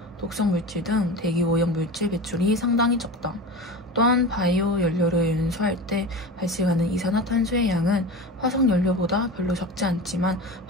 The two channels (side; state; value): both; normal; correlation 0.30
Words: 독성물질 등 대기 오염 물질 배출이 상당히 적다. 또한 바이오 연료를 연소할 때 발생하는 이산화탄소의 양은 화석 연료보다 별로 적지 않지만